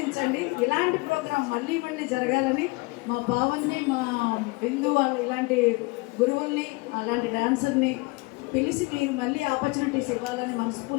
ఇలాంటి ప్రోగ్రాం మళ్ళీ మళ్ళీ జరగాలని మా భావన్ని, మా బిందు వాళ్ళు ఇలాంటి గురువుల్ని, అలాంటి డాన్సర్ని పిలిచి మీరు మళ్ళీ ఆపర్చునిటీస్ ఇవ్వాలని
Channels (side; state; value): right; quieter; 26.0 dB